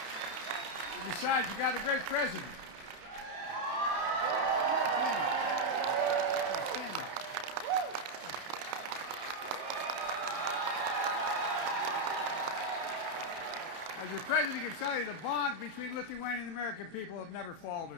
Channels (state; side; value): late; left; 31 ms